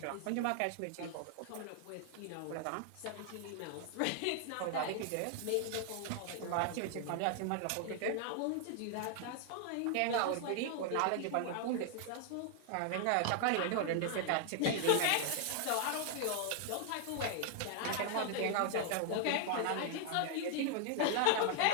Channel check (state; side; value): different; both; correlation 0.00